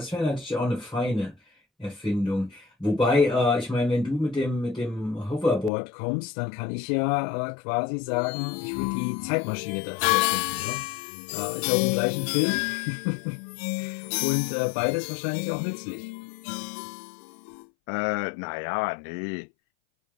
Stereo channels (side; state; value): right; drops out; at 5.7 s